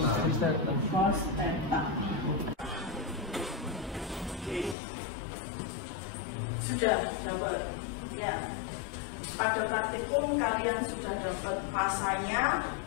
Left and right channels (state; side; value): drops out; right; at 4.8 s